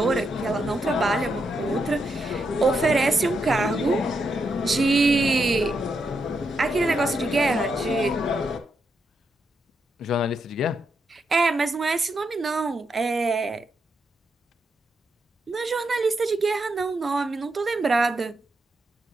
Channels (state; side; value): normal; both; correlation 0.82